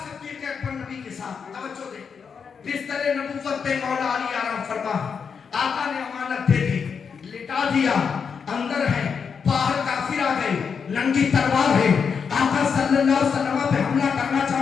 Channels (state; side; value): quieter; right; 6.2 dB